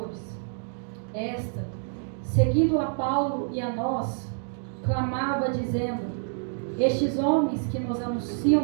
Esta, seguindo a Paulo e a nós, clamava dizendo: estes homens que nos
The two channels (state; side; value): silent; left; digital silence